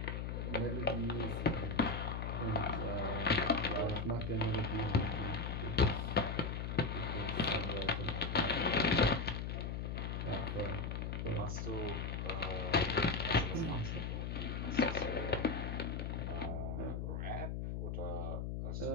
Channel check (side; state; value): left; noise; hum, 3 dB below the sound